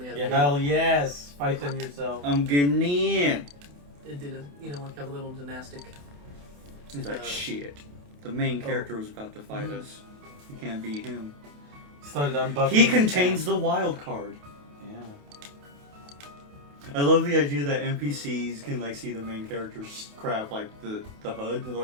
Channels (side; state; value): left; late; 28 ms